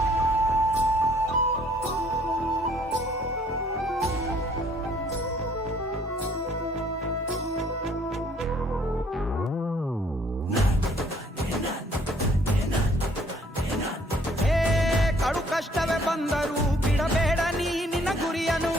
ಕಷ್ಟವೇ ಬಂದರೂ ಬಿಡಬೇಡ ನೀ ನಿನ್ನ ಗುರಿಯನು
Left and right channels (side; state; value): both; normal; correlation 0.61